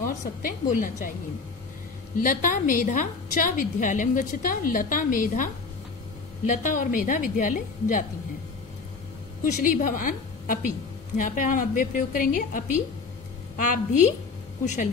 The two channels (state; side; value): quieter; right; 4.5 dB